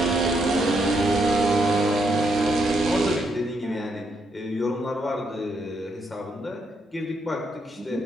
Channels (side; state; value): both; normal; correlation 0.77